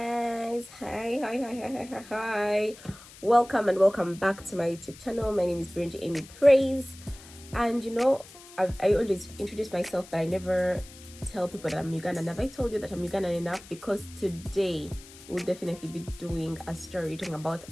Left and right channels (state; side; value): noise; left; hiss, 19 dB below the sound